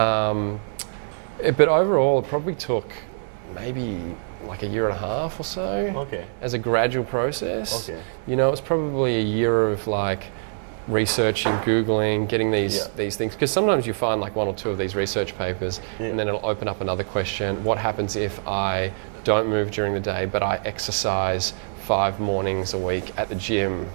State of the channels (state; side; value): silent; left; digital silence